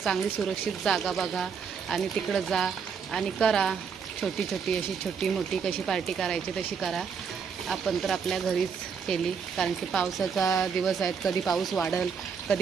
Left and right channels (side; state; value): left; quieter; 6.3 dB